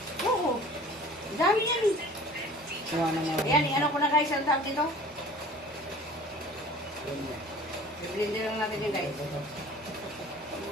Oo. Dami yan. Siya na nga. Ayan, ano ko na guys, ang tawag dito? I-blender lang natin yun guys.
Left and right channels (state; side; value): normal; both; correlation 0.45